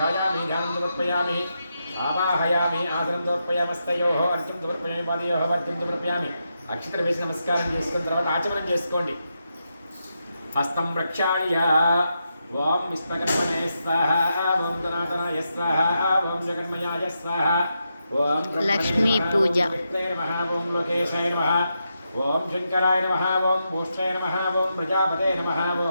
ध्यानं समर्पयामि आवाहयामि आसनं समर्पयामस्तयोः अर्घ्यं समर्पयामि पादयोः अर्घ्यं समर्पयामि अक्षत्र वेసి नमस्कारं చేసుకున్న తర్వాత ఆచమనం చేసుకోండి हस्तं प्रक्षाल्य ओं विश्वकर्मणे स्वाहा ओं धनातनाय स्वाहा ओं जगन्मयाय स्वाहा ओं लक्ष्मी पूजा नमः ओं लोकेशाय नमः ओं शंकराय नमः ओं भूष्ठाय नमः ओं प्रजापते नमः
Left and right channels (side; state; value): both; inverted; correlation -0.85